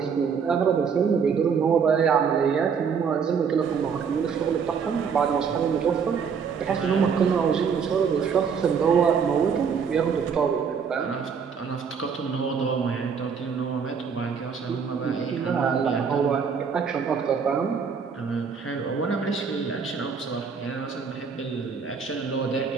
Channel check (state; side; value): quieter; left; 6.3 dB